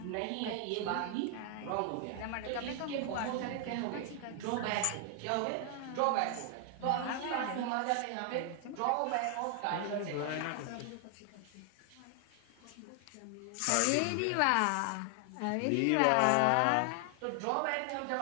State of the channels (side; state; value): both; different; correlation 0.00